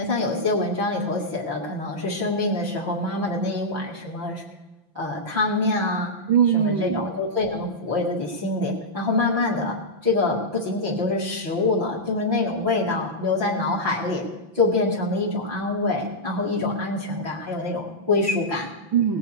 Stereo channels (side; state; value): left; late; 6.0 ms